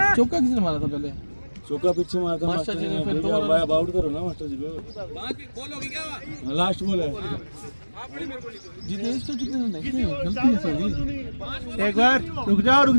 चौका किसने मारा था पहले? चौका पीछे मारता मास्टर जी ने फिर दो रन आउट करो ना मास्टर जी को। लास्ट बॉल है। जितेश तो कितने रन है? गलती है सभी। एक बार रुक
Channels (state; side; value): inverted; both; correlation -1.00